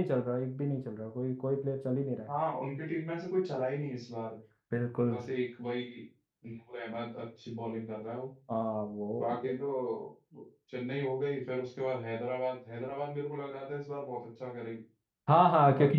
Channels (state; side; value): identical; both; correlation 1.00